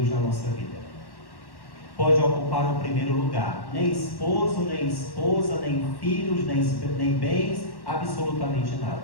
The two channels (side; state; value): right; late; 1.1 ms